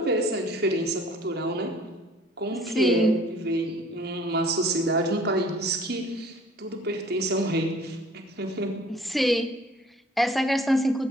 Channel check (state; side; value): normal; both; correlation 0.53